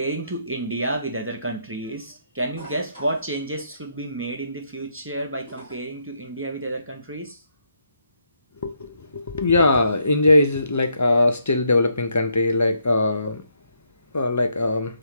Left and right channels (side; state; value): both; inverted; correlation -0.76